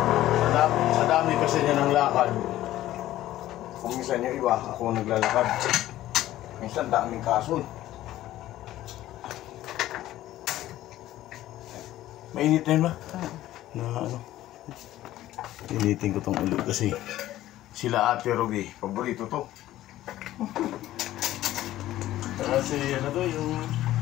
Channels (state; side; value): quieter; right; 14.4 dB